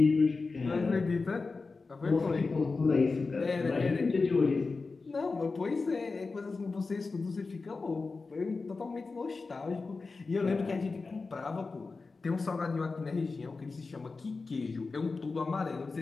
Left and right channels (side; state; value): right; quieter; 4.1 dB